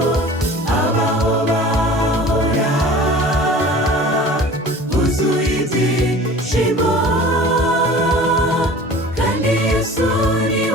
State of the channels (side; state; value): both; normal; correlation 0.42